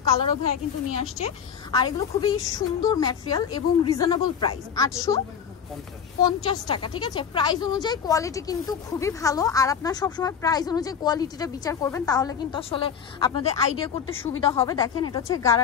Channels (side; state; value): right; quieter; 7.5 dB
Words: কালারও ভাইয়া কিন্তু নিয়ে আসছে। আর এগুলো খুবই সুন্দর ম্যাটেরিয়াল এবং রিজনেবল প্রাইস, 850 টাকা, ঠিক আছে? প্রাইস অনুযায়ী কোয়ালিটি কিন্তু খুবই ভালো। আর আপনারা সবসময় প্রাইস অনুযায়ী কোয়ালিটিটা বিচার করবেন, তাহলে কিন্তু আসলে আপনাদের আইডিয়া করতে সুবিধা হবে। দেখেন, এটা হচ্ছে